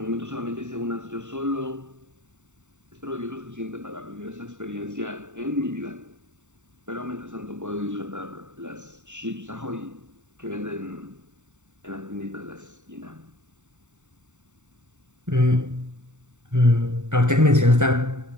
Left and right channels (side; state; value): left; late; 0.84 ms